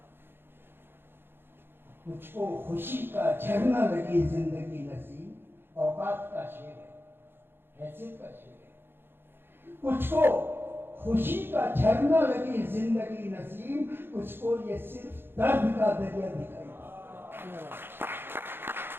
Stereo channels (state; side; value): late; left; 0.10 ms